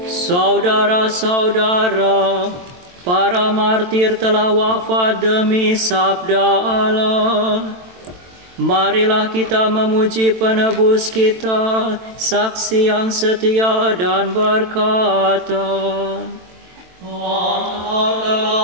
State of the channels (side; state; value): left; late; 23 ms